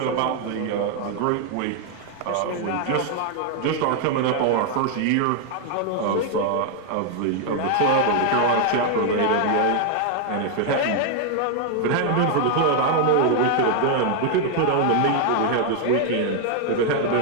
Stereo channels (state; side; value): different; both; correlation 0.00